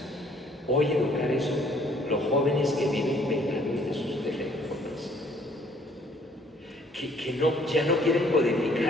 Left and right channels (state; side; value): normal; both; correlation 0.61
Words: Hoy educar eso, los jóvenes que viven pegados de sus teléfonos, que ya no quieren